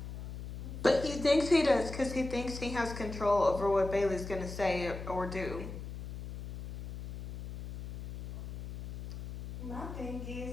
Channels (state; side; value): noise; left; hum, 8 dB below the sound